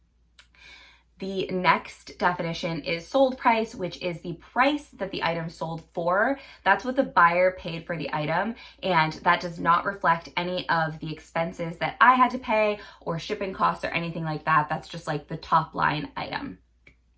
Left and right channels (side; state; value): both; identical; correlation 1.00